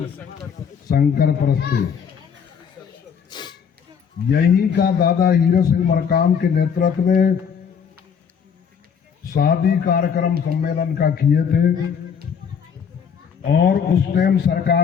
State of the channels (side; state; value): right; quieter; 7.0 dB